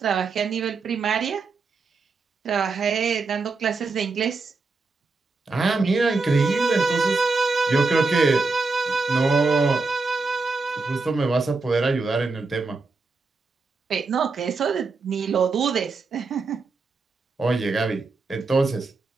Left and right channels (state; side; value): quieter; left; 4.0 dB